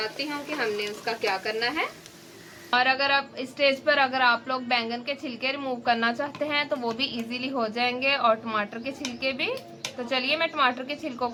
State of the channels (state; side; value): identical; both; correlation 1.00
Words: हूँ कि हमने उसका क्या करना है। और अगर आप इस स्टेज पर अगर आप लोग बैंगन के छिलके रिमूव करना चाहते हैं तो वो भी इजीली हो जाएंगे, और टमाटर के छिलके भी। तो चलिए मैं टमाटर के छिलकों